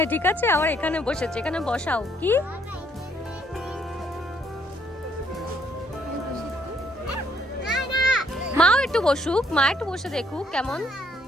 ঠিক আছে, আবার এখানে বসেছে, এখানে বসাও। কি মাও একটু বসুক, মা একটু বসে দেখুক কেমন।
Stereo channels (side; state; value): both; normal; correlation 0.68